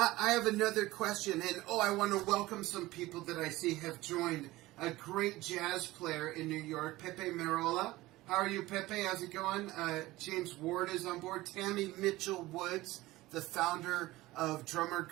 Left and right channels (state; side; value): quieter; left; 18.4 dB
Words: have another question. And I want to welcome some people that I see have joined. A great jazz player in New York, Pepe Merola. How are you, Pepe? How's it going? James Ward is on board. Tammy Mitchell Woods, the founder of Drummer